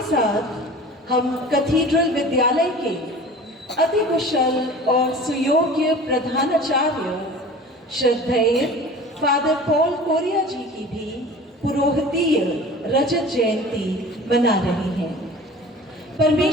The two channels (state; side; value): normal; both; correlation 0.41